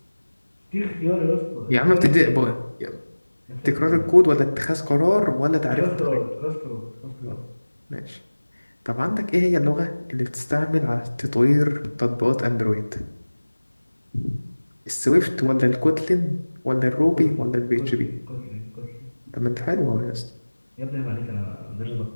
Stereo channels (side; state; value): both; inverted; correlation -1.00